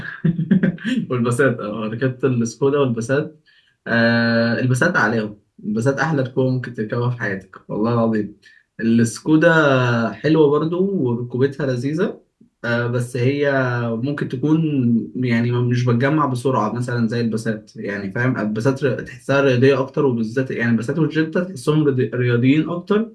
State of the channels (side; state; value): both; identical; correlation 1.00